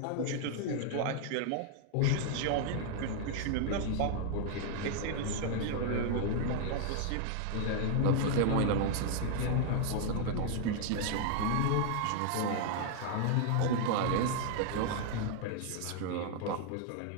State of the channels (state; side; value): different; both; correlation 0.00